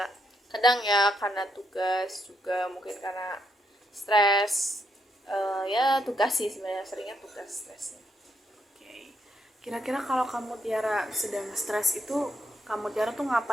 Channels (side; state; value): both; normal; correlation 0.77